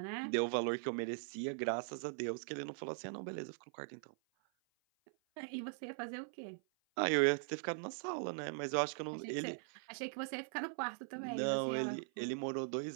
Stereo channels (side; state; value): left; silent; 51 dB below the other